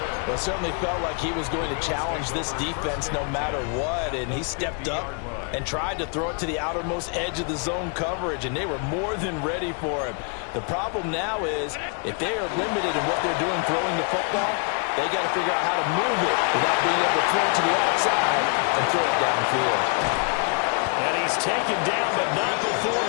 Well, it certainly felt like he was going to challenge this defense no matter what, and he stepped up and tried to throw it to the outermost edge of the zone coverage, and they were more than ready for him. The problem now is if they are limited in what they're doing throwing the football, they got to figure out how to move it without being able to throw it to the outside and throw it downfield. And he's taken down, but not before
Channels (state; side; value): quieter; right; 38.7 dB